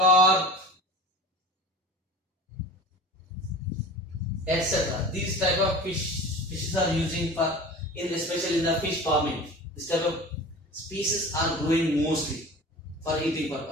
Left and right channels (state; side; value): normal; both; correlation 0.37